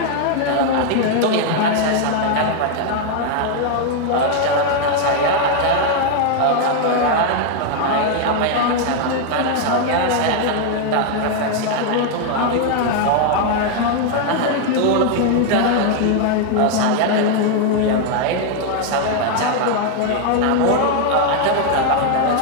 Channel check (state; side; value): different; both; correlation 0.00